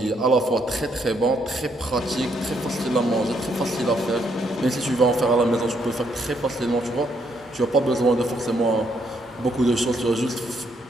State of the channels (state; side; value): normal; both; correlation 0.73